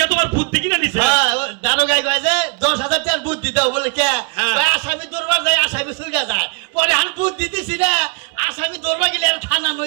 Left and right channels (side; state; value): left; quieter; 33.2 dB